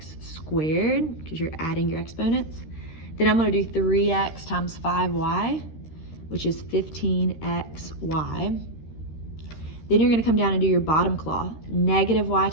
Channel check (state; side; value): late; right; 13 ms